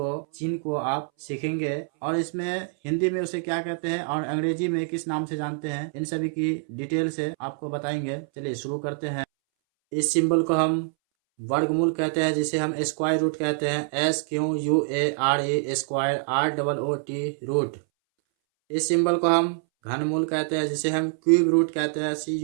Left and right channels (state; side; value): silent; left; 61 dB below the other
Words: चिन्ह को आप सीखेंगे और इसमें हिंदी में उसे क्या कहते हैं और अंग्रेजी में किस नाम से जानते हैं, इन सभी की डिटेल से आपको बताएंगे। चलिए शुरू करते हैं। इस सिंबल को हम वर्गमूल कहते हैं, जिसे हम स्क्वायर रूट कहते हैं। SQUARE square ROOT root. इस सिंबल को हम घनमूल कहते हैं, जिसे हम क्यूब रूट कहते हैं।